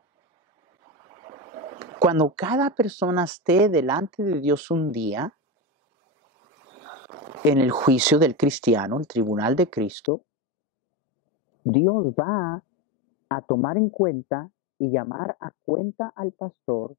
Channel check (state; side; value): drops out; right; at 10.1 s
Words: Cuando cada persona esté delante de Dios un día, en el juicio del cristiano, el tribunal de Cristo, Dios va a tomar en cuenta y llamar a cuenta al pastor